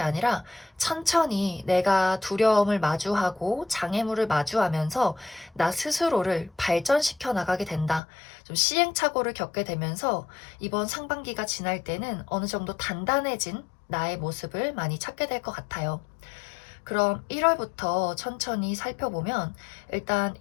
아니라 천천히 내가 두려움을 마주하고 장애물을 마주하면서 나 스스로를 발전시켜 나가게 된다. 좀 시행착오를 겪게 되면서 이번 상반기가 지날 때는 어느 정도 단단해진 나의 모습을 많이 찾게 될 것 같아요. 그럼 1월부터 천천히 살펴보면 일단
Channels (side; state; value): right; drops out; at 8.0 s